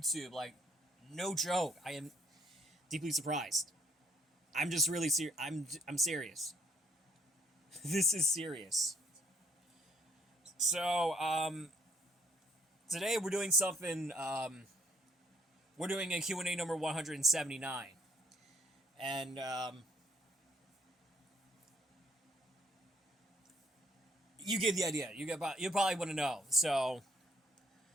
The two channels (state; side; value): normal; both; correlation 0.66